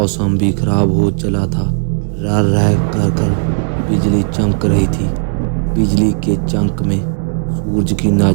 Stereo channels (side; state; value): left; silent; digital silence